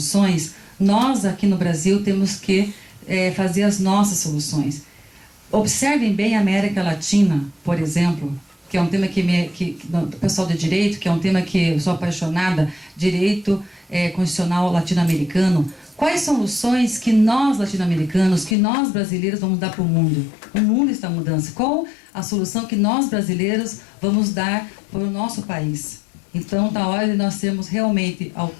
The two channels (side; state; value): right; drops out; at 18.6 s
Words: nós aqui no Brasil temos que fazer as nossas soluções. Observem bem a América Latina, por exemplo, que é um tema que o pessoal de direito, que é um tema que eu sou apaixonada, direito constitucional latino-americano. Quais soluções que nós latino-americanos, que nós brasileiros vamos dar para o mundo? O mundo está em mudança. Qual a solução que nós brasileiros vamos dar para o nosso país? Então, está a hora de nós sermos realmente